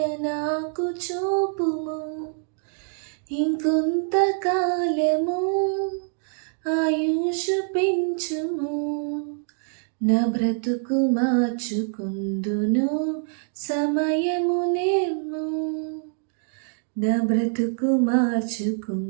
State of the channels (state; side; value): silent; left; 62 dB below the other